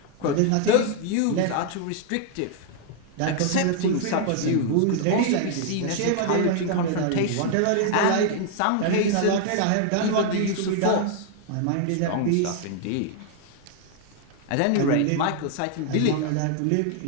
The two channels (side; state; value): both; different; correlation 0.00